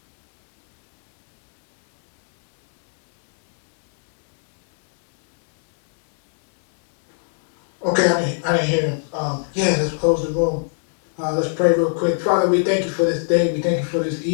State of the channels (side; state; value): right; silent; digital silence